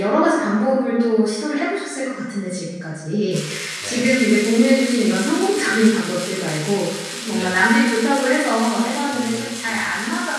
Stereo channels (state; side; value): identical; both; correlation 1.00